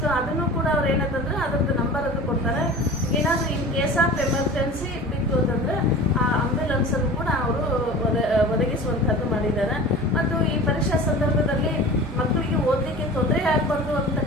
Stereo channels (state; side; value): normal; both; correlation 0.37